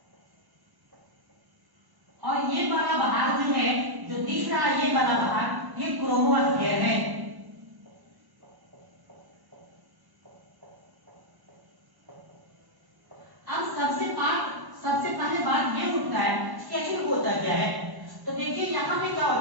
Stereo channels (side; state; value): left; late; 1.1 ms